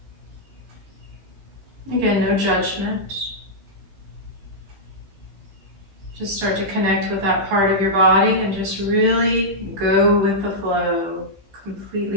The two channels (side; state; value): left; late; 15 ms